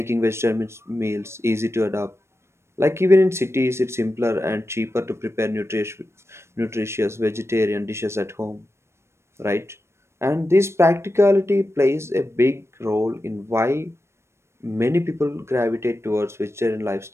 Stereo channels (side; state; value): left; late; 0.13 ms